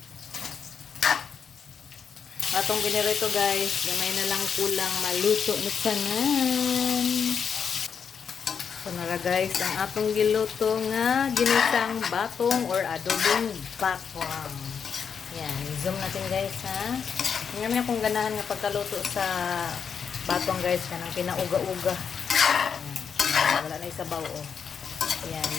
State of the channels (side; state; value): right; quieter; 6.8 dB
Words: Atong ginirito guys, gamay na lang kulang maluto na tanan. So nara guys, ang atong giluto nga ginisang batong or adobong bakwang. Yan, zoom natin guys ha. Ngayon niya kung ganahan nga pagkaluto sa batong guys, kanang pinauga-uga. Wala na isabaw oh. Yan,